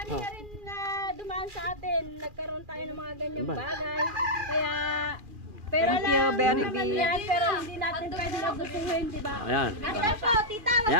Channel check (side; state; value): left; late; 2.4 ms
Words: Oh. na rin na dumaan sa atin. Nagkaroon tayo ng mga ganyang Sambal. bagay. Kaya, pera Thank you, lang very naman big. yan, pero hindi natin pwede nagustuhin, di ba? Ayan. Ayan po, tita,